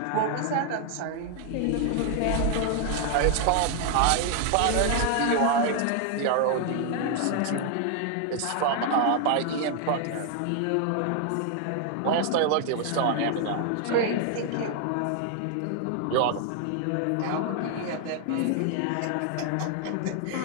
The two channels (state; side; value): different; both; correlation 0.00